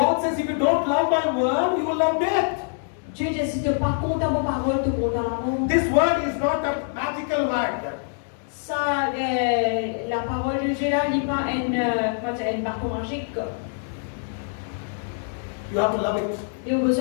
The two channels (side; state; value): right; silent; digital silence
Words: says if you don't love my word, you will love death. Dieu dit si tu pas contre ma parole, tu contre la mort. This word is not a magical word. Ça, la parole de Dieu là, n'est pas une bâton magique. You have to love it. Il y a